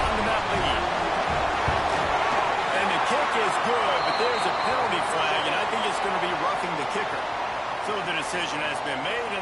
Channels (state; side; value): identical; both; correlation 1.00